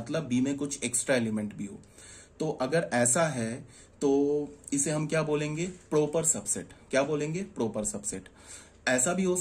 बी में कुछ एक्स्ट्रा एलिमेंट भी हो, तो अगर ऐसा है तो इसे हम क्या बोलेंगे, प्रॉपर सबसेट। क्या बोलेंगे, प्रॉपर सबसेट। ऐसा भी हो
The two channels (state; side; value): identical; both; correlation 1.00